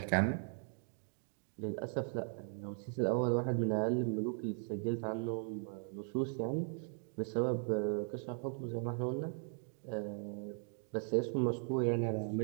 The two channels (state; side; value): silent; left; 52 dB below the other